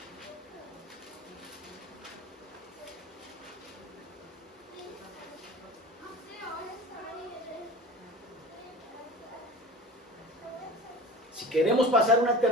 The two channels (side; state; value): both; normal; correlation 0.37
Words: Si queremos pasar una